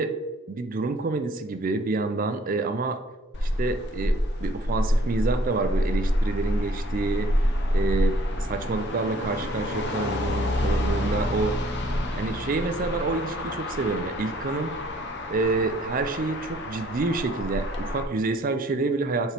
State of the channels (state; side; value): normal; both; correlation 0.58